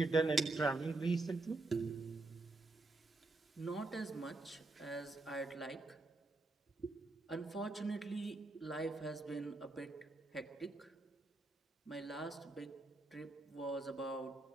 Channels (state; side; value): quieter; left; 3.2 dB